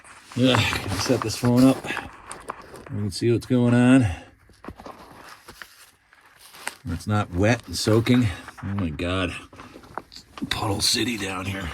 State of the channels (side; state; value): both; identical; correlation 1.00